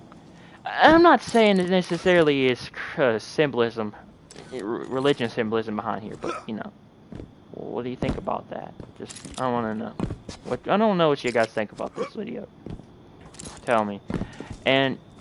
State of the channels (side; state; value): both; identical; correlation 1.00